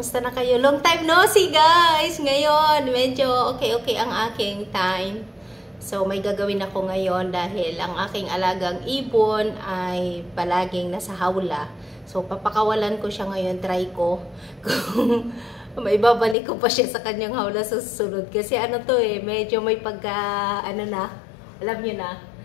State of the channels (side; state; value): right; drops out; at 16.4 s